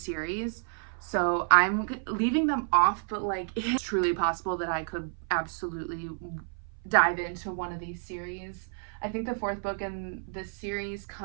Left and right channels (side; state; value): left; silent; 58 dB below the other